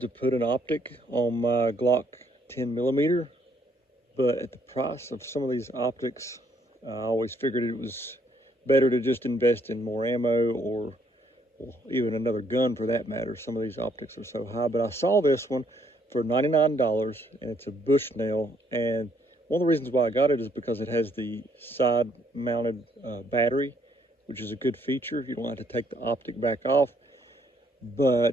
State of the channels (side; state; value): both; normal; correlation 0.68